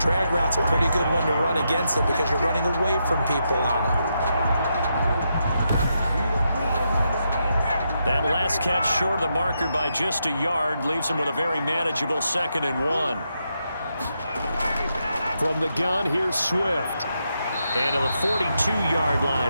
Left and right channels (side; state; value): both; inverted; correlation -0.83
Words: route's a pretty good one to run against it because you're running away from people on it. That last catch short of the marker by just a yard leaves him with a very manageable 2nd and 1. From the gun, here's Swift. And to the 42-yard